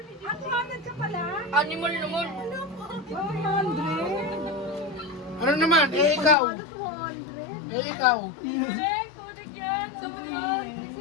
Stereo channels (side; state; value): right; drops out; at 6.4 s